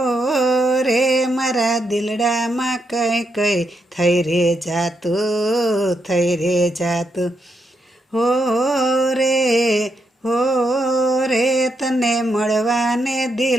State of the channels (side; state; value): both; normal; correlation 0.81